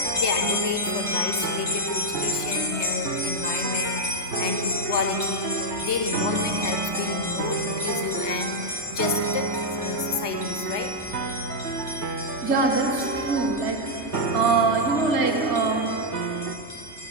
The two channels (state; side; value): late; right; 3.3 ms